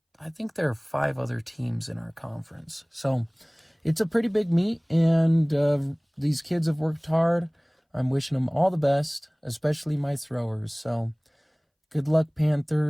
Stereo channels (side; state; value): both; identical; correlation 1.00